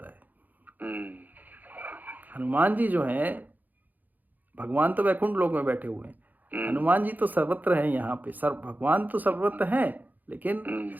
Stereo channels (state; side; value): late; left; 0.083 ms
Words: है। हनुमान जी जो हैं, भगवान तो वैकुंठ लोक में बैठे हुए हैं, हनुमान जी तो सर्वत्र हैं यहाँ पे। भगवान तो सर्वत्र हैं, लेकिन